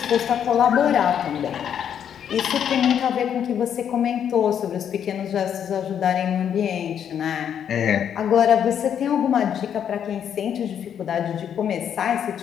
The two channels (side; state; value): right; quieter; 8.8 dB